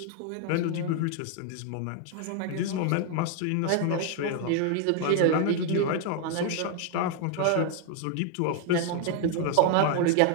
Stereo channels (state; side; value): different; both; correlation 0.00